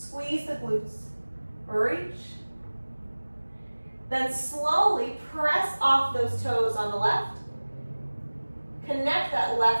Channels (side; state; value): both; inverted; correlation -1.00